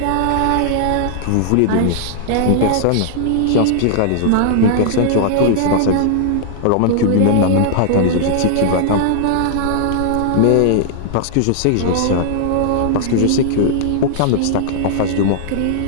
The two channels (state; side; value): different; both; correlation -0.01